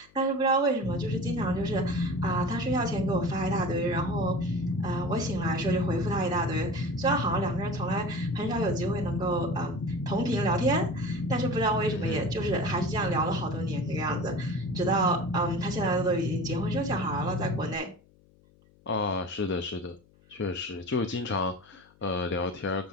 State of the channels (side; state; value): left; noise; hum, 30 dB below the sound